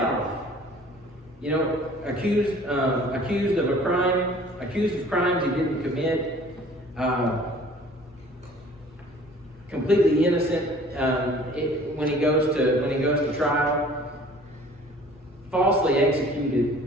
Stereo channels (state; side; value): normal; both; correlation 0.50